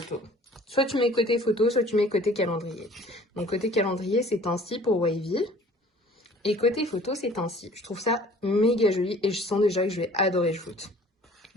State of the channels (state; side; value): normal; both; correlation 0.51